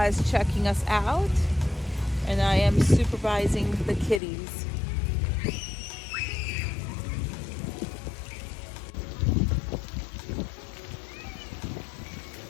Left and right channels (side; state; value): right; drops out; at 4.2 s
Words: is checking us out and I am supervising the kitties.